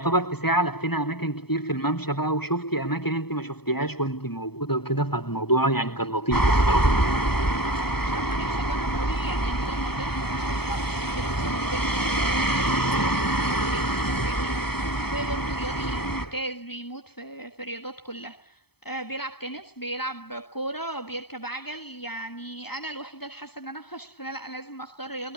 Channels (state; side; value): late; right; 0.97 ms